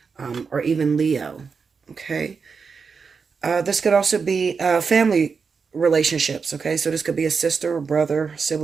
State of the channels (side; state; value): left; quieter; 5.4 dB